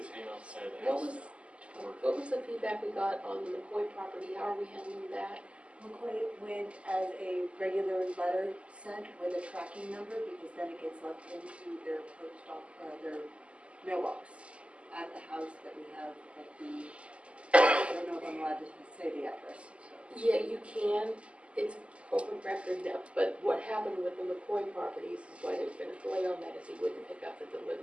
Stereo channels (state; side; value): late; left; 0.057 ms